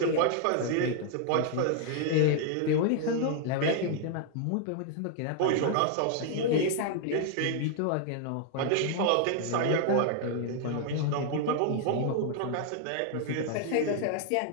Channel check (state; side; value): different; both; correlation 0.00